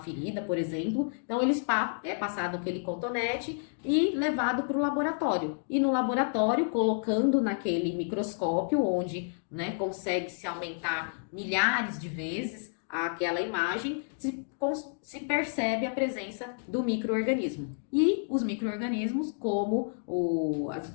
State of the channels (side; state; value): right; silent; digital silence